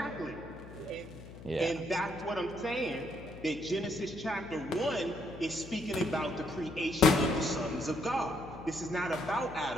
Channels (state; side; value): noise; left; hum, 15 dB below the sound